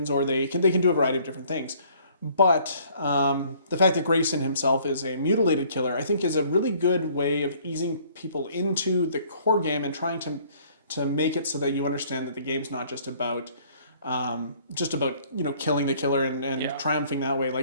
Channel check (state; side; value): inverted; both; correlation -0.58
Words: or they can do a variety of different things. But the fact that Grayson himself is a mutilated killer, I think, is a really good way of easing people into the core game and trying to make it so that you understand that the game's not just about killing the killer and triumphing that way.